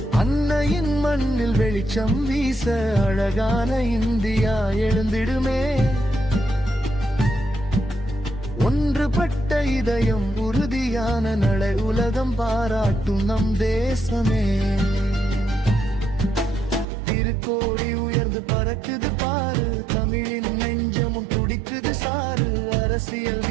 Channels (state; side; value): drops out; left; at 16.9 s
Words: அன்னையின் மண்ணில் வெளிச்சம் வீச அழகான இந்தியா எழுந்திடுமே. ஒன்றுபட்ட இதயம் உறுதியான நடை உலகம் பாராட்டும் நம் தேசமே. திருக்கோடி உயர்ந்து பறக்குது பாரு, தமிழின் நெஞ்சமும் துடிக்குது சாரு. அரசியல்